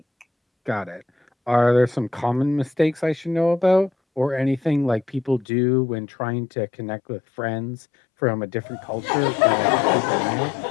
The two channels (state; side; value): drops out; right; at 5.5 s